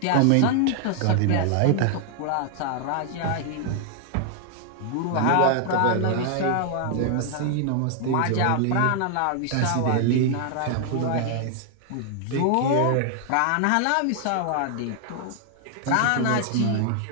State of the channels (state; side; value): different; both; correlation 0.00